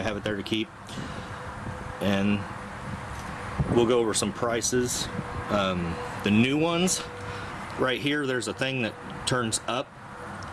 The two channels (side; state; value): both; identical; correlation 1.00